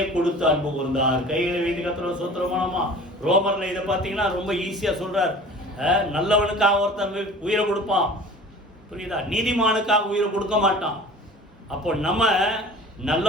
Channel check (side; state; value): both; normal; correlation 0.42